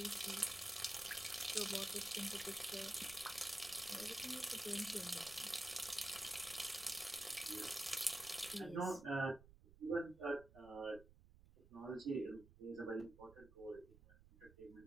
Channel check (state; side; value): noise; right; rumble, 21 dB below the sound